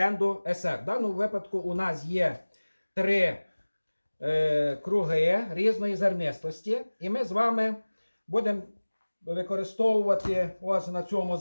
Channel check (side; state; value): both; inverted; correlation -1.00